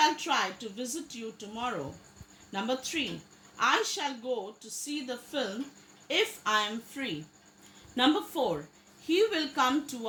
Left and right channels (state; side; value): identical; both; correlation 1.00